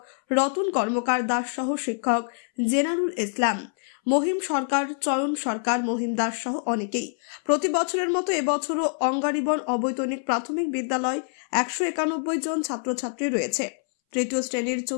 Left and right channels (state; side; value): silent; right; 61 dB below the other